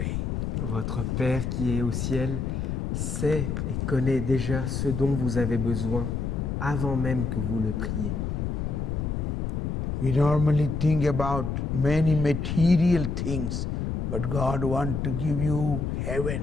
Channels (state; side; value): noise; left; rumble, 1 dB below the sound